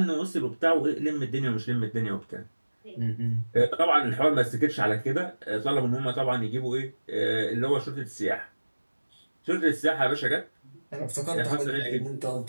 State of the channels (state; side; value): inverted; both; correlation -1.00